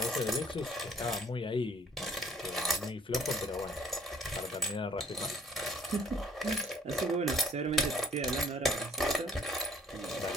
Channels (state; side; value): normal; both; correlation 0.59